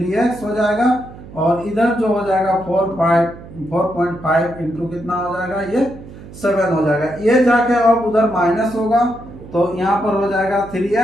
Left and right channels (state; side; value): noise; right; hum, 17 dB below the sound